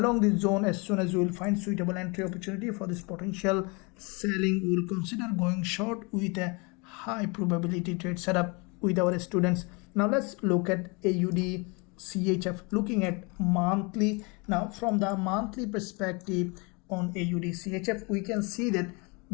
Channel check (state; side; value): quieter; right; 29.7 dB